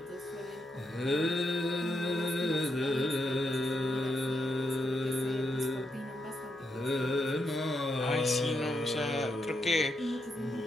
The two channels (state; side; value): normal; both; correlation 0.81